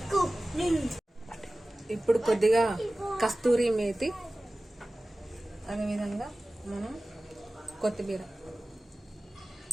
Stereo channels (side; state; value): both; normal; correlation 0.97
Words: ఇప్పుడు కొద్దిగా కస్తూరి మేతి, అదేవిధంగా మనం కొత్తిమీర